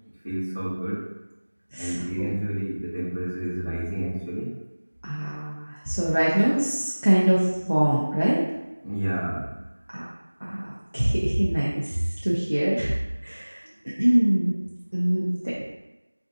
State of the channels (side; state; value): both; inverted; correlation -1.00